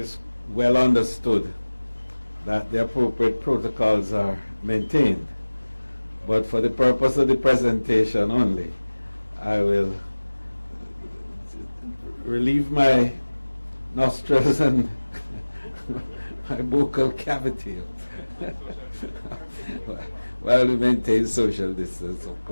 well understood that the appropriate protocols are maintained. But for the purpose of the presentation only, I will relieve my nostrils and my vocal cavity while we maintain social distance, of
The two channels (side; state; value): both; inverted; correlation -1.00